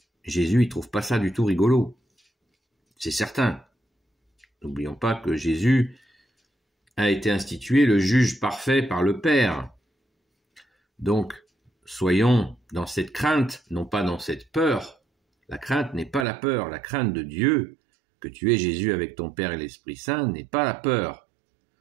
Jésus, il trouve pas ça du tout rigolo. C'est certain. N'oublions pas que Jésus a été institué le juge parfait par le Père. Donc, soyons dans cette crainte, non pas dans cette peur. La crainte n'est pas la peur. La crainte de Dieu, que tu es Jésus avec ton Père et l'Esprit Saint, n'est pas la peur.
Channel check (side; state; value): left; drops out; at 16.2 s